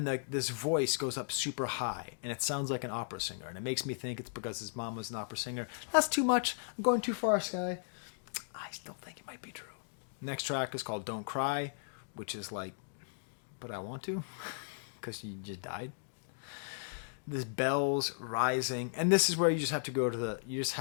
this voice goes up super high, and it sounds like an opera singer. And it makes me think it's because his mom was an opera singer. That's too much. I'm going too far, Skye. I still think it might be true. Next track is called Don't Cry, which is but I want to, because you just died. this bells rising, and this is where you just have to go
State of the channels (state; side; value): silent; right; digital silence